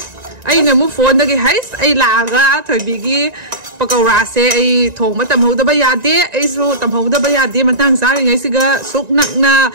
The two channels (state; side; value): late; left; 1.9 ms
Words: ꯑꯩꯅ ꯑꯃꯨꯛ ꯐꯣꯟꯗꯒꯤ ꯍꯩꯁ ꯑꯩ ꯂꯥꯛꯑꯒ ꯊꯣꯏꯕꯤꯒꯤ ꯄꯀꯧꯔꯥꯁꯦ ꯑꯩ ꯊꯣꯡꯕ ꯇꯝꯍꯧꯗꯕ ꯌꯥꯗꯦ ꯑꯩꯁꯨ ꯇꯝꯍꯧꯗꯕ ꯌꯥꯗꯦ ꯃꯇꯥꯡ ꯆꯥꯔꯤꯉꯩꯁꯤꯒ ꯁꯨꯛ ꯅꯛꯅ